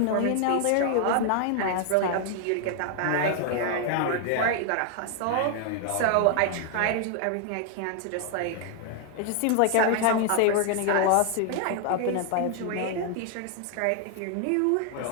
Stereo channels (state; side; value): different; both; correlation 0.00